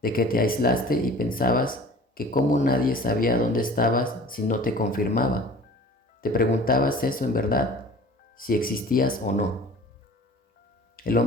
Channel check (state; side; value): normal; both; correlation 0.44